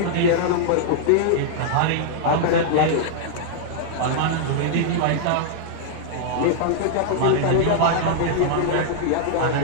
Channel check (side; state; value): both; different; correlation -0.01